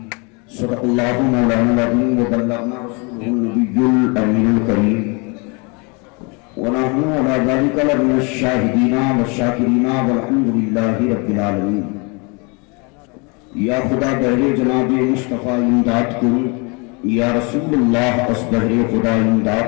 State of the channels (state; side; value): quieter; right; 31.4 dB